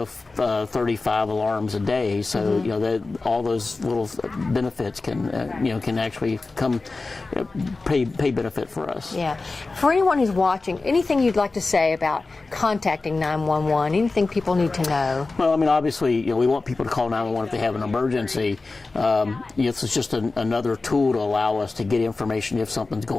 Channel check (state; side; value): quieter; right; 3.6 dB